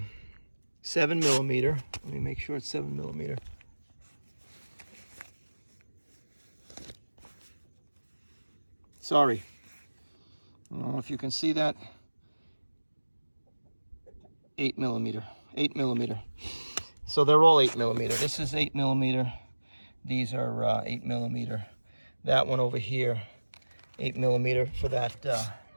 7 millimeter. Let me make sure it's 7 millimeter. Sorry, I don't know if you can see that. 8 millimeter. So they're all 8 millimeter. This is 8 millimeter. These are 8 millimeter. That one over here, 8 millimeter for that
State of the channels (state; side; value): inverted; both; correlation -1.00